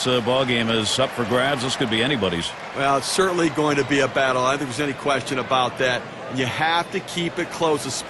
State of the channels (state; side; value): identical; both; correlation 1.00